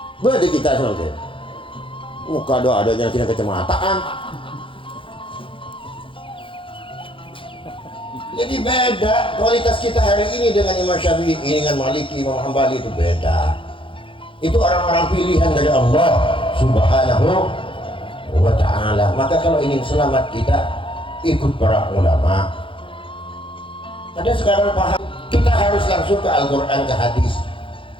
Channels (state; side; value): late; right; 0.25 ms